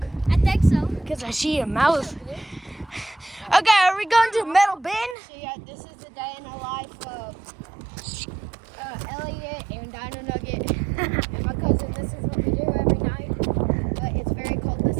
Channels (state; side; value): drops out; left; at 5.2 s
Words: I think so. Because I see a mouth. Okay, are we going to Metal Bin? So yeah, this is the day in the life of Elliot and Dino Nugget and my cousin. This is what we do every night. But it's very cold this